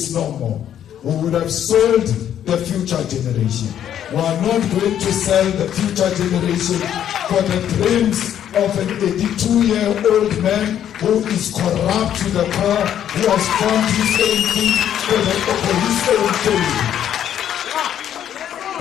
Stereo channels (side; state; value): right; quieter; 10.2 dB